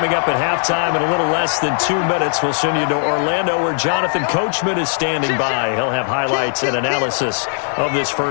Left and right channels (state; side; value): silent; right; 67 dB below the other